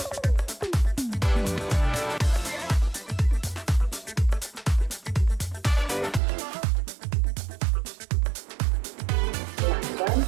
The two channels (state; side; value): drops out; left; at 6.2 s